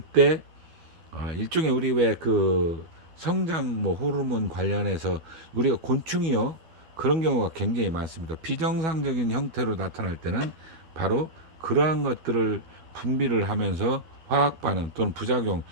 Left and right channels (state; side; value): late; left; 12 ms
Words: 일종의 우리 왜 그 성장 뭐 호르몬 관련해서 우리가 곤충이요 그런 경우가 굉장히 많습니다. 비정상적인 형태로 나타날 때는 바로 그러한 것들을 분비를 하면서 화학 반응 또는 부작용